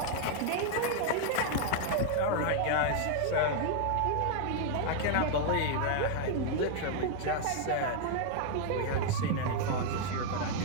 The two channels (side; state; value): both; different; correlation 0.00